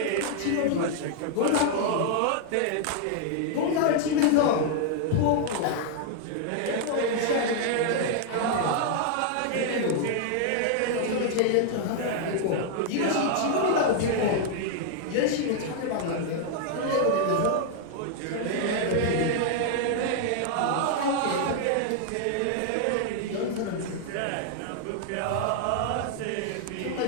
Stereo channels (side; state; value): both; different; correlation 0.00